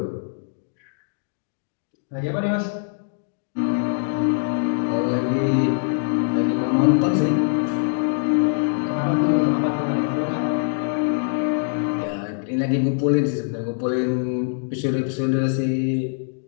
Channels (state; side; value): silent; right; digital silence